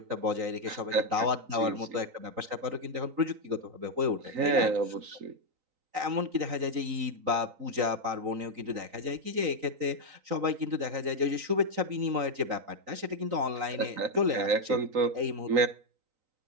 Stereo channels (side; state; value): left; late; 3.9 ms